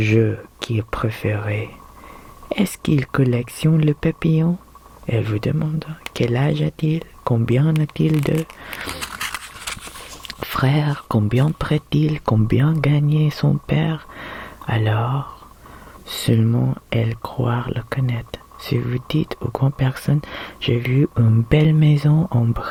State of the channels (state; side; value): identical; both; correlation 1.00